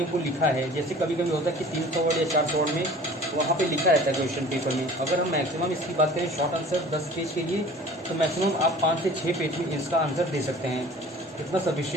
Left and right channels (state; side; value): normal; both; correlation 0.45